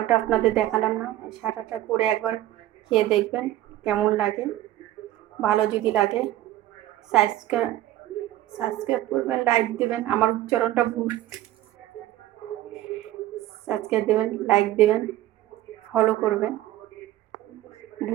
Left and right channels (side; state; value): left; quieter; 14.5 dB